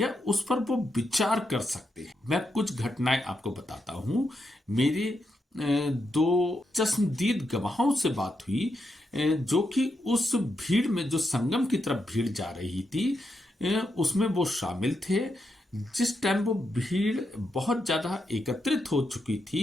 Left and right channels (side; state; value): both; normal; correlation 0.84